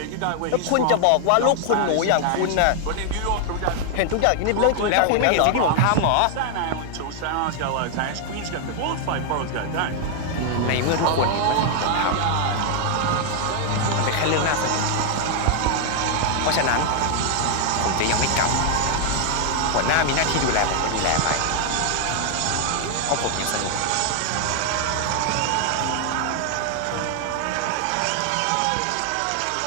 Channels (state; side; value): different; both; correlation 0.00